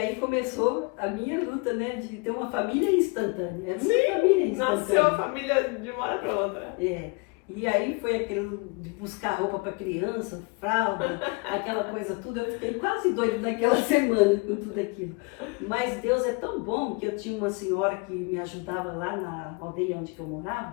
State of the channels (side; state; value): right; quieter; 30.1 dB